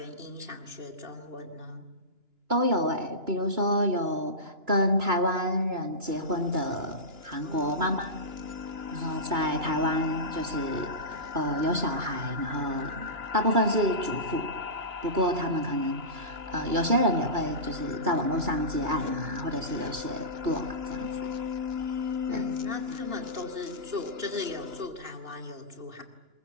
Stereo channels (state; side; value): late; left; 2.9 ms